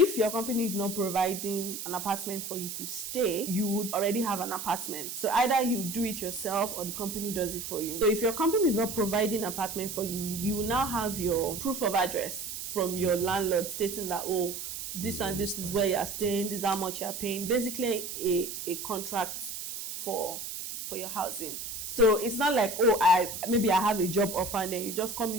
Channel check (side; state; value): right; noise; hiss, 7 dB below the sound